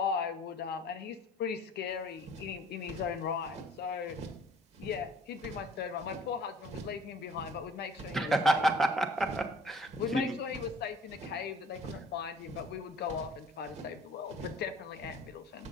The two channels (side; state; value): both; normal; correlation 0.52